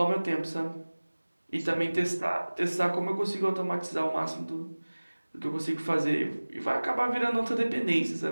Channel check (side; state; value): both; inverted; correlation -1.00